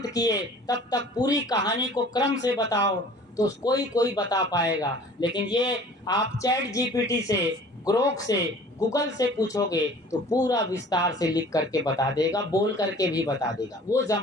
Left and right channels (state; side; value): normal; both; correlation 0.47